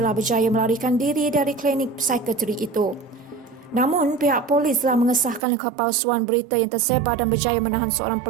berjaya melarikan diri dari klinik psikiatri itu. Namun, pihak polis telah mengesahkan kepalsuan berita yang tersebar dan berjaya menahan seorang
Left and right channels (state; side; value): drops out; left; at 5.4 s